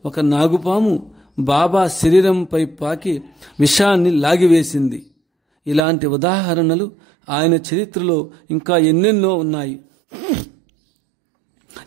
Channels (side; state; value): left; drops out; at 5.8 s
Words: ఒక నాగుపాము బాబా శరీరంపై పాకి విషాన్ని లాగివేసింది. ఇలాంటి ఉదాహరణలు ఆయన చరిత్రలో ఇంకా ఎన్నెన్నో ఉన్నాయి.